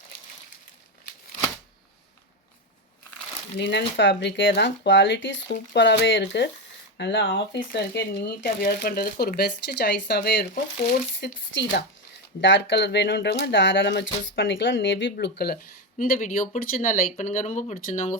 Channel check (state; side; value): normal; both; correlation 0.12